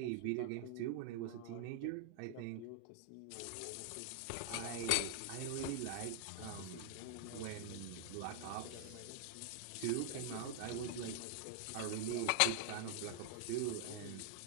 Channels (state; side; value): different; both; correlation 0.00